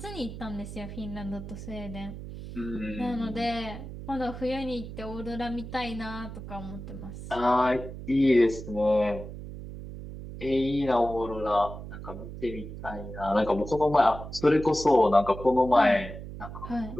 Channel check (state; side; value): noise; right; hum, 10 dB below the sound